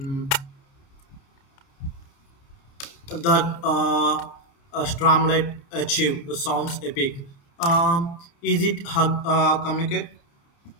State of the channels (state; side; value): late; right; 29 ms